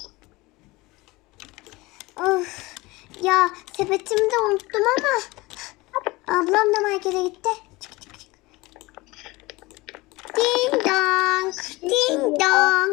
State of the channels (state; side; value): quieter; right; 21.8 dB